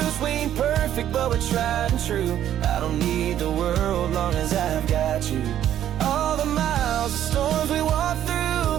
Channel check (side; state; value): left; quieter; 11.1 dB